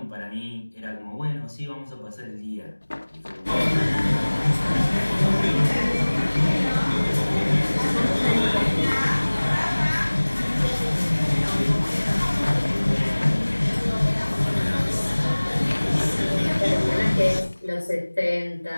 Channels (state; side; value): inverted; both; correlation -1.00